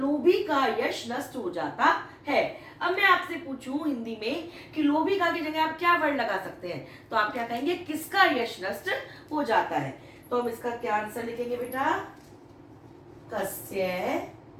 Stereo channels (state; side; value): identical; both; correlation 1.00